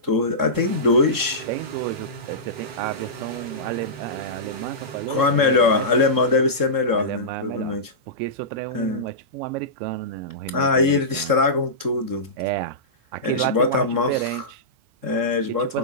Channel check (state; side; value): late; left; 3.7 ms